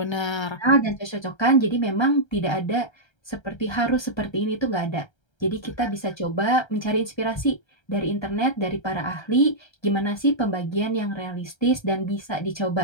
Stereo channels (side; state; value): right; late; 1.3 ms